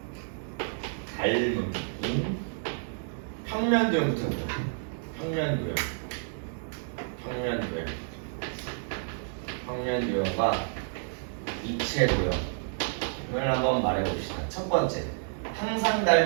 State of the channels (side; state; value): left; silent; digital silence